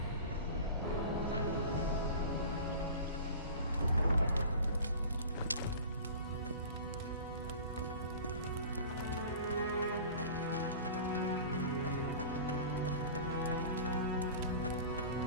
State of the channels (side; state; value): both; inverted; correlation -0.38